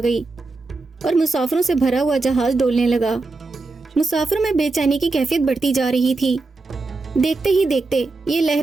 گئی اور مسافروں سے بھرا ہوا جہاز ڈولنے لگا۔ مسافروں میں بے چینی کی کیفیت بڑھتی جا رہی تھی۔ دیکھتے ہی دیکھتے یہ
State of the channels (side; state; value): left; quieter; 3.5 dB